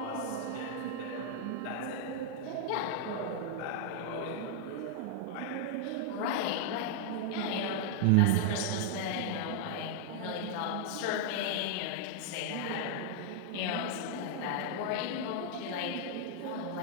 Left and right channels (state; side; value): different; both; correlation -0.01